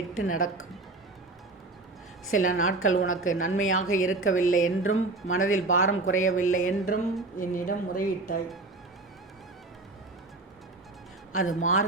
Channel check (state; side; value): quieter; left; 3.3 dB